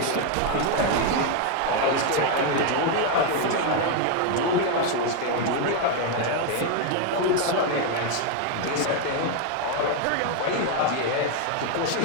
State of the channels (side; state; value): both; different; correlation 0.01